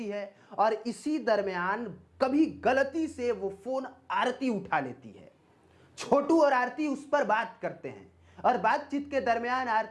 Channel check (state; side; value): identical; both; correlation 1.00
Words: है और इसी दरमियान कभी गलती से वो फोन आरती उठा लेती है। छोटू और आरती उस पर बात करते हैं और बातचीत के दरमियान